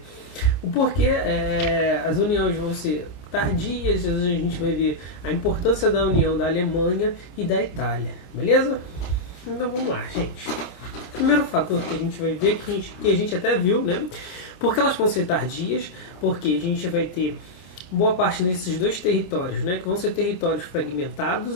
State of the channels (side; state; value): right; late; 28 ms